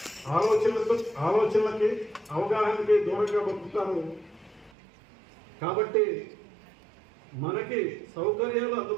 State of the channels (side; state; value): left; drops out; at 4.7 s